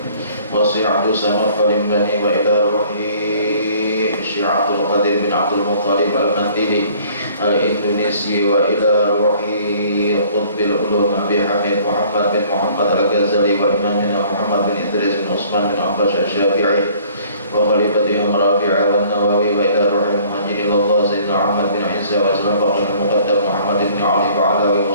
والشيخ عبد الصمد البني وإلى روحه الشيخ عبد القادر بن عبد المطلب المندلي الإندونيسي وإلى روحه قطب العلوم أبي حميد محمد بن محمد الغزالي وإمامنا محمد بن إدريس بن عثمان بن عباس الشافعي وخليفتهم رافع والنووي وإلى روح المهاجر إلى الله سيدنا محمد بن عيسى وسلم بقي المقدم محمد بن علي وعلى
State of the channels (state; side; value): inverted; both; correlation -0.55